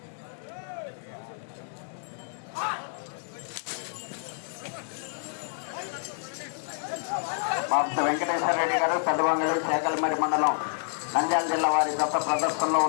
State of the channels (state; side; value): silent; right; 59 dB below the other